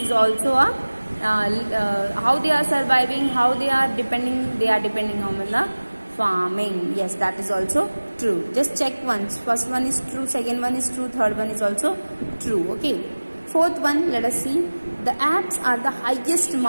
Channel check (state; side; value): inverted; both; correlation -1.00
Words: also a how they are surviving, how they are depending. They are depending on the farming. Yes, that is also true. Just check once. First one is true, second one is true, third one is also true. Okay. Fourth one, let us see. The Alps are the highest